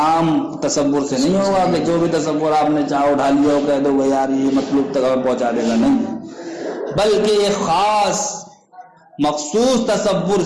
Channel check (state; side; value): identical; both; correlation 1.00